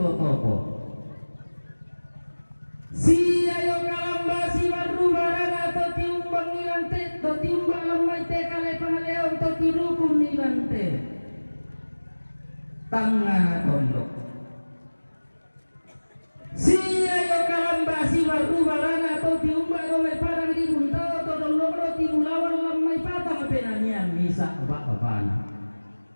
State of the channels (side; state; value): both; inverted; correlation -1.00